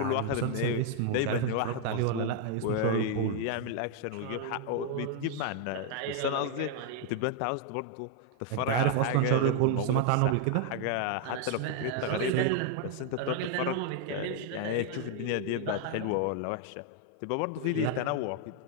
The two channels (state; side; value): different; both; correlation 0.00